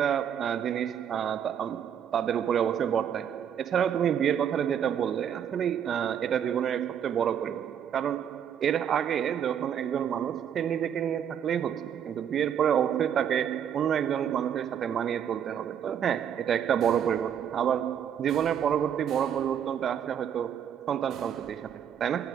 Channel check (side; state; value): left; quieter; 8.8 dB